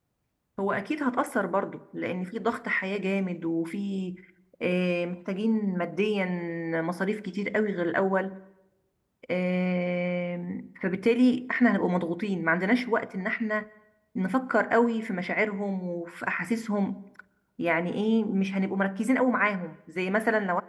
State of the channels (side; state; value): both; identical; correlation 1.00